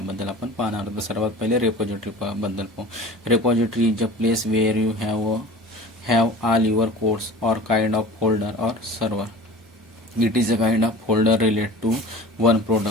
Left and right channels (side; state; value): both; normal; correlation 0.39